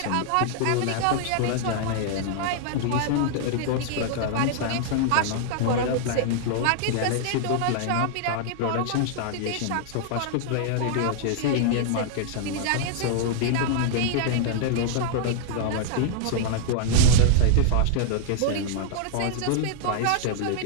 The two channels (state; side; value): different; both; correlation -0.01